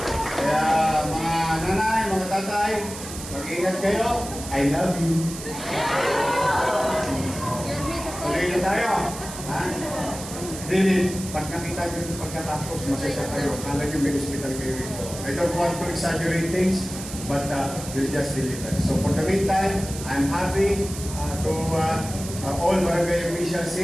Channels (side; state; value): right; noise; hiss, 11 dB below the sound